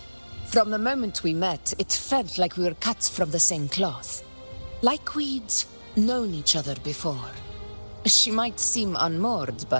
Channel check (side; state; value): both; inverted; correlation -1.00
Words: From the moment we met, it felt like we were cut from the same cloth. Like we'd known each other before. She might seem unmoored,